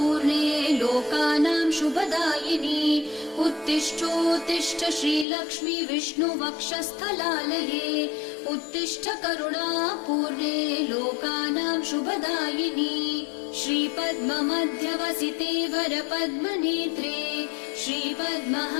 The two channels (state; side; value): drops out; right; at 5.2 s